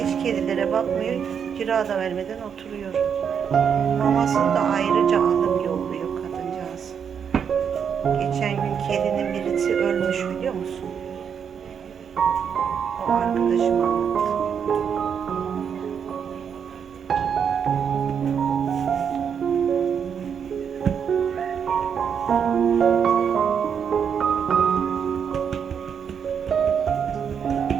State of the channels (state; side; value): quieter; left; 7.4 dB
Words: kedilere bakmıyor. Kira da vermeden oturuyor. Mamasını da ayrıca alıp yolluyor kadıncağız. Geçen gün kedinin birisi ölmüş biliyor musun? O arkadaşım anlattı.